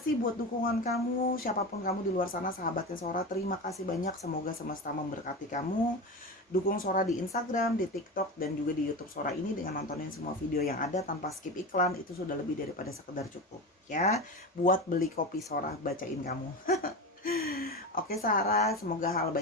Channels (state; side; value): normal; both; correlation 0.24